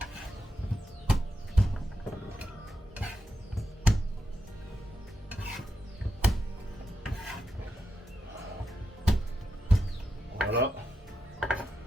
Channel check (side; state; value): both; normal; correlation 0.86